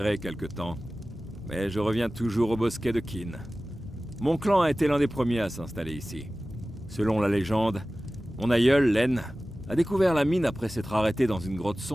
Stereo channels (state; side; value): normal; both; correlation 0.97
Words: quelque temps. Mais je reviens toujours au bosquet de Kin. Mon clan a été l'un des premiers à s'installer ici. Selon la légende, mon aïeul, Len, a découvert la mine après s'être arrêté dans une grotte